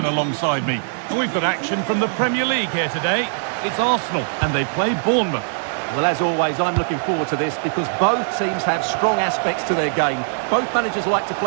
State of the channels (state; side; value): silent; left; digital silence